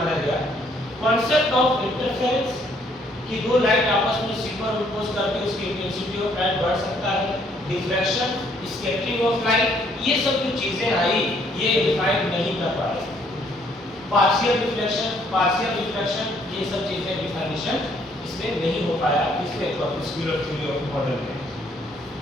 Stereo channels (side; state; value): both; normal; correlation 0.66